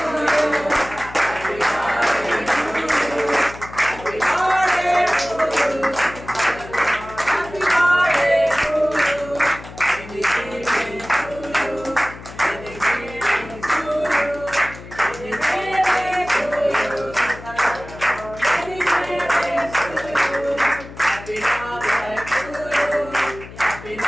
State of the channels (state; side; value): noise; left; hum, 15 dB below the sound